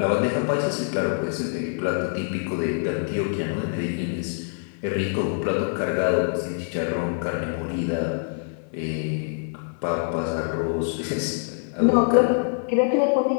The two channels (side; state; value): right; silent; 60 dB below the other